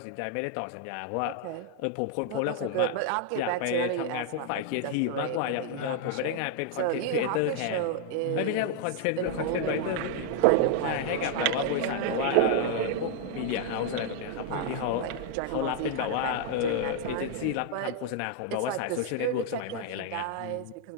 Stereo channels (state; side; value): different; both; correlation 0.00